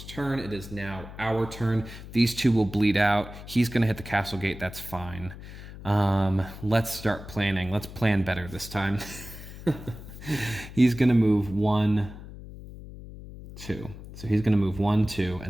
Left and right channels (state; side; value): noise; left; hum, 14 dB below the sound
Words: turn. It is now our turn. These 2 will bleed out. He's going to hit the castle gate. That's fine. Let's start planning. Let's plan better this time. He's going to move 1, 2. So he's going to move 1, 2,